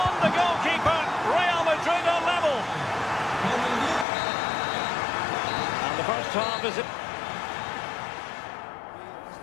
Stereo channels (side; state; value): right; drops out; at 4.0 s